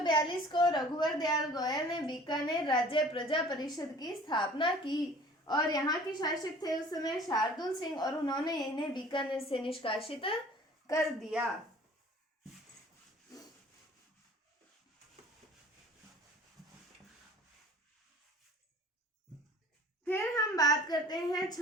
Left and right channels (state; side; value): normal; both; correlation 0.48